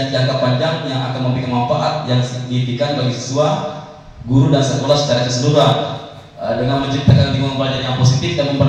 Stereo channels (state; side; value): identical; both; correlation 1.00